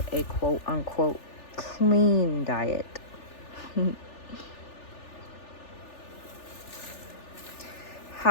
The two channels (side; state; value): right; late; 3.4 ms